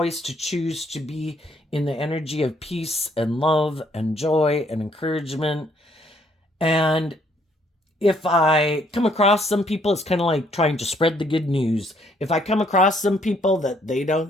to choose to be in the energy of peace and love and joy and encouragement. And if I come across some people, it's kind of like trying to spread the good news. If I come across some people that they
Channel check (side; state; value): both; normal; correlation 0.67